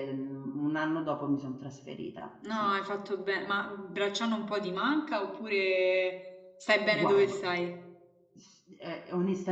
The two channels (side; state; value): both; identical; correlation 1.00